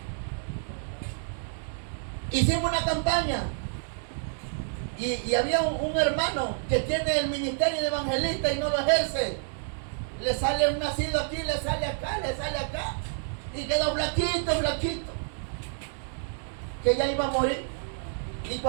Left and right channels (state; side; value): silent; left; digital silence